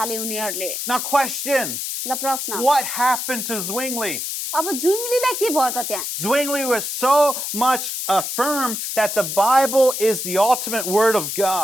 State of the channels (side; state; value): left; noise; hiss, 4 dB below the sound